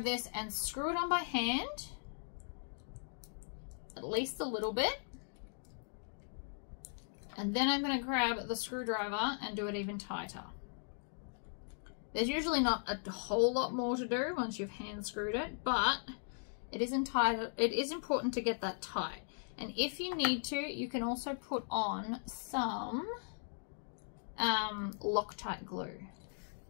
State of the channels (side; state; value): right; silent; digital silence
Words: this and screw it on by hand, at least a little bit. And then I'm going to grab the screwdriver and do it even tighter. There's usually not a whole lot more to do once you've hand screwed it, but it is important to get that tight. And if you need to, you can also put on some Loctite glue.